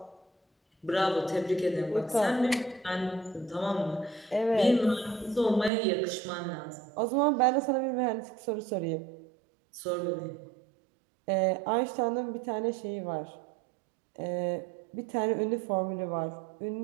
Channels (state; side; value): drops out; left; at 5.7 s